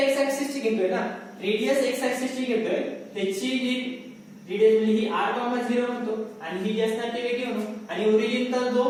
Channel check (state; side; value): identical; both; correlation 1.00